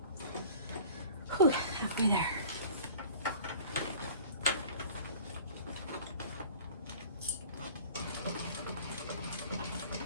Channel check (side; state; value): both; inverted; correlation -0.45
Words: Whew, halfway there.